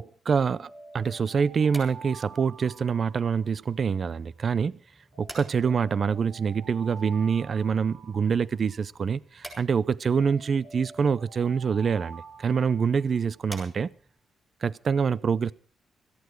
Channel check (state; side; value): quieter; left; 5.9 dB